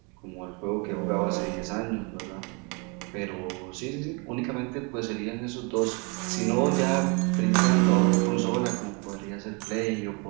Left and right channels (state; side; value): quieter; left; 32.6 dB